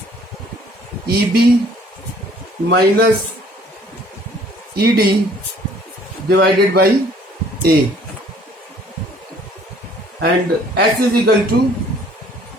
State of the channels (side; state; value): both; normal; correlation 0.57